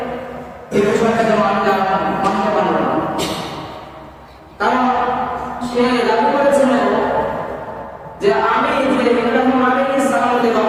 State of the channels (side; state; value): both; identical; correlation 1.00